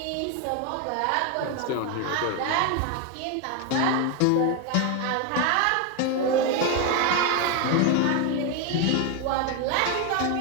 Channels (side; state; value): both; different; correlation 0.02